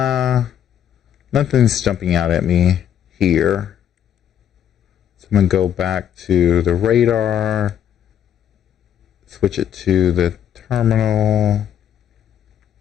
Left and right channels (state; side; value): quieter; right; 9.6 dB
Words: nothing's jumping out at me here. So I'm going to go back to the radar, switch it to the terminal,